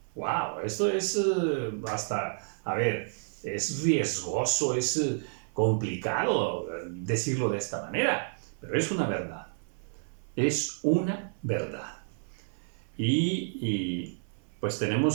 ¡Wow! Esto es es riesgoso, es complicado decirlo de esta manera, pero es una verdad. Es una verdad. Y pues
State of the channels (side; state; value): left; silent; 56 dB below the other